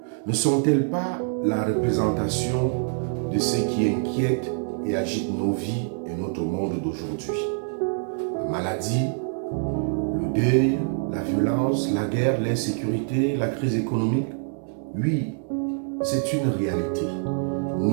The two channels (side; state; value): left; silent; 62 dB below the other